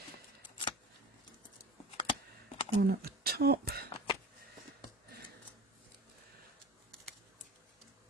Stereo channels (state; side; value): normal; both; correlation 0.37